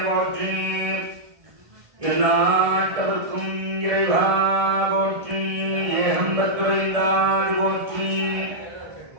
எல்லாட்டவர்க்கும் இறைவா போற்றி ஏகம்பத்துரைந்தாதி போற்றி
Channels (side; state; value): left; late; 1.7 ms